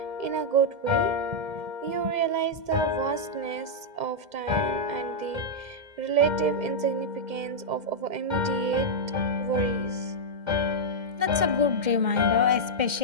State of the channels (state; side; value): late; left; 2.1 ms